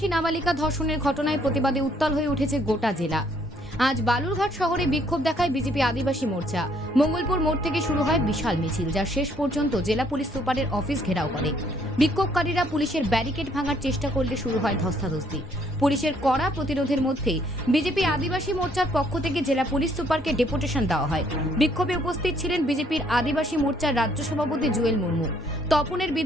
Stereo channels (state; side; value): normal; both; correlation 0.66